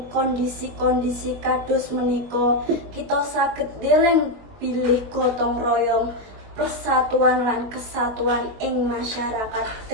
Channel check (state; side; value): late; left; 21 ms